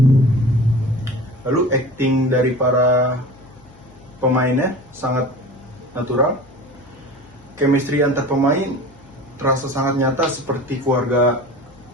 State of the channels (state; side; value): noise; left; hum, 26 dB below the sound